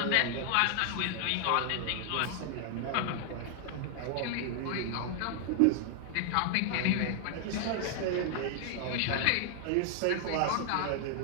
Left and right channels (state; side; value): different; both; correlation 0.00